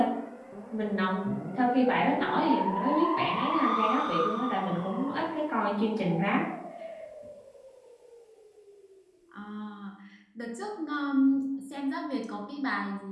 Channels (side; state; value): both; identical; correlation 1.00